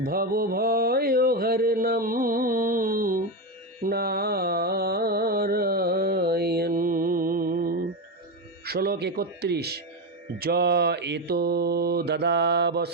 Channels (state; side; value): normal; both; correlation 0.13